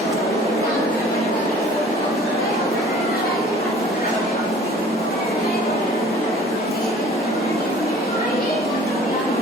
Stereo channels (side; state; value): both; normal; correlation 0.50